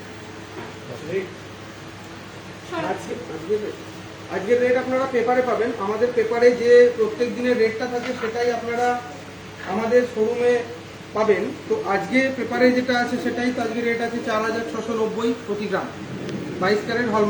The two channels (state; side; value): identical; both; correlation 1.00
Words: আজকের রেট আপনারা পেপারে পাবেন। আমাদের পেপারে যে প্রত্যেক দিনের রেটটা থাকে সেটাই আপনারা আমাদের শোরুমে পাবেন। তো আজকে পেপারে যেটা আছে সেটাই তো আজকে রেট আছে 4,690 প্রতি গ্রাম, 22 ক্যারেট